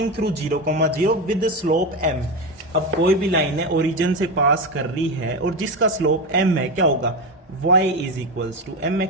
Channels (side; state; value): both; normal; correlation 0.16